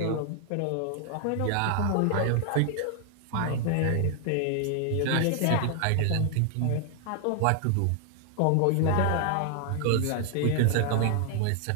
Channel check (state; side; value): different; both; correlation 0.00